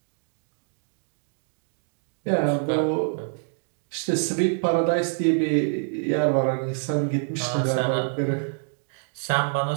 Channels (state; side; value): silent; left; digital silence